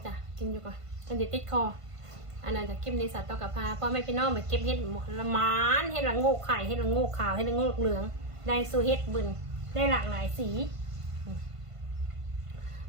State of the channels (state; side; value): late; left; 1.5 ms